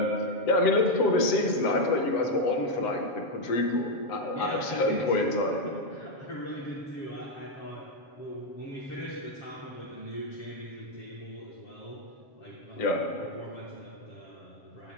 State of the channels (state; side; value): late; right; 7.3 ms